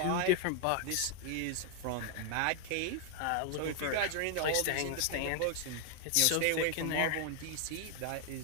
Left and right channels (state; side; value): different; both; correlation 0.00